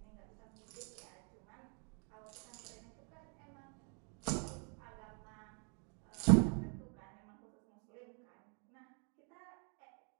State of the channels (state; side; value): quieter; left; 38.9 dB